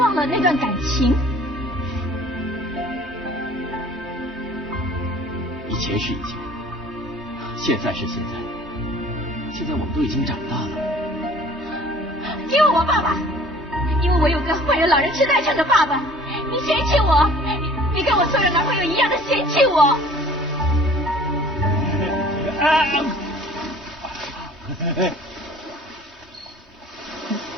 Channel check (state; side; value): normal; both; correlation 0.50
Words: 了那段感情。以前是以前，现在是现在，现在我们都已经长大了。因为我爸爸，因为我有个患有老人痴呆症的爸爸，你嫌弃我，你跟我所有的男朋友一样的嫌弃我。